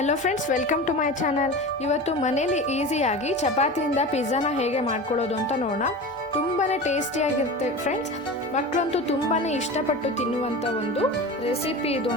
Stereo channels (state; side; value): normal; both; correlation 0.30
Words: friends, welcome to my channel. ಇವತ್ತು ಮನೇಲಿ ಈಸಿಯಾಗಿ ಚಪಾತಿಯಿಂದ ಪಿಜ್ಜಾನ ಹೇಗೆ ಮಾಡ್ಕೊಳ್ಳೋದು ಅಂತ ನೋಡೋಣ. ತುಂಬಾ ಟೇಸ್ಟಿಯಾಗಿರುತ್ತೆ ಫ್ರೆಂಡ್ಸ್. ಮಕ್ಕಳಂತೂ ತುಂಬಾ ಇಷ್ಟಪಟ್ಟು ತಿನ್ನುವಂಥ ಒಂದು ರೆಸಿಪಿ ಇದು